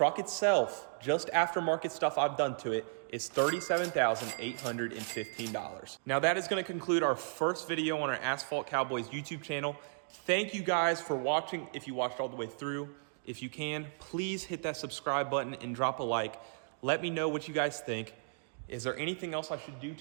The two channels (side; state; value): left; silent; digital silence